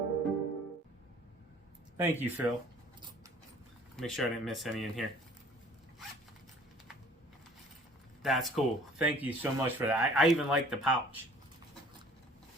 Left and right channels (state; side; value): normal; both; correlation 0.52